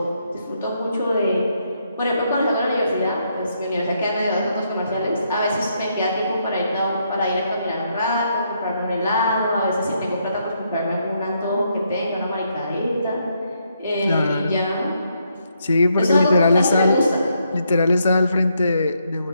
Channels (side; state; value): both; inverted; correlation -0.77